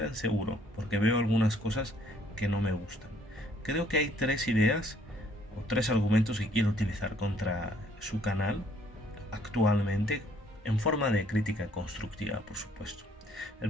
seguro, porque veo algunas cosas que no me gustan. Creo que hay tres ideas o tres argumentos que quiero utilizar contra su canal actualmente, en forma de crítica constructiva, por supuesto.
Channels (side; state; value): both; normal; correlation 0.63